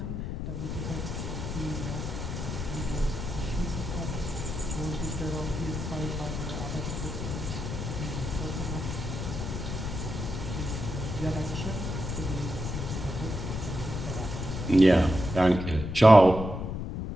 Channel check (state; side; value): noise; left; rumble, 4 dB below the sound